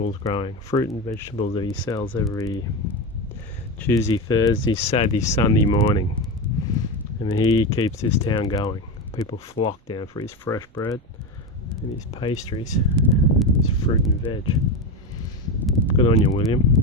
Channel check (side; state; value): both; normal; correlation 0.17